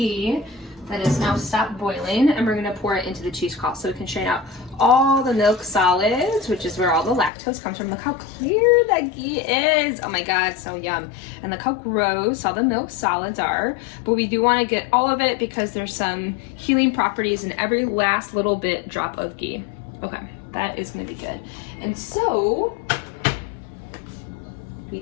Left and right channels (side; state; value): right; drops out; at 7.3 s